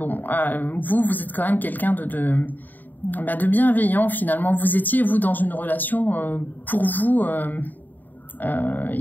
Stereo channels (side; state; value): right; late; 0.087 ms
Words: êtes quand même quelqu'un de bienveillant finalement. Vous étiez, vous, dans une relation pour vous